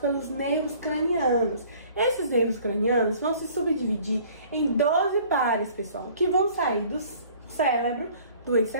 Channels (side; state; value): both; inverted; correlation -0.53